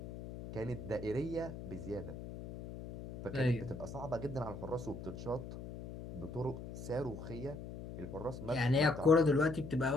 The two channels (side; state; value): left; noise; hum, 10 dB below the sound